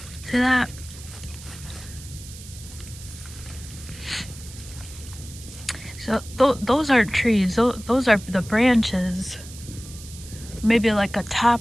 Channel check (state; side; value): noise; right; hiss, 16 dB below the sound